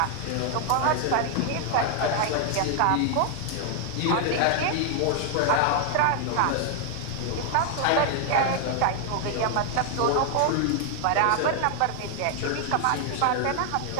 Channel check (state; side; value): different; both; correlation 0.00